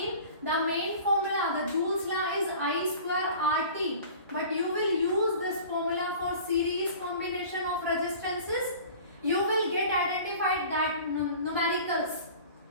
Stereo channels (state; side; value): inverted; both; correlation -0.43